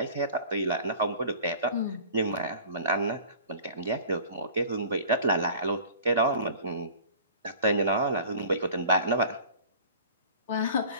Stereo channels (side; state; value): both; inverted; correlation -0.44